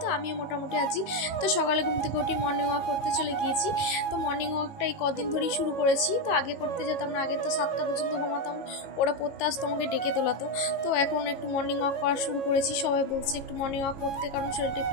তো আমিও মোটামুটি আছি। তো সকালে ঘুম থেকে উঠে মর্নিং ওয়াক করতে চলে গিয়েছি। তো মর্নিং ওয়াকটা এই কদিন ধরেই শুরু করেছি। তো আগে করতে যেতাম না, আগে তো 7টা পর্যন্ত ঘুমাতাম, ওরা পড়তে আসতো, আমাকে ডেকে তোলাতো। তো এখন একটু মর্নিং ওয়াক করা শুরু করেছি। সবাই বলছে একটু মর্নিং ওয়াক করতে, কারণ শরীরটা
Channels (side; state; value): right; late; 18 ms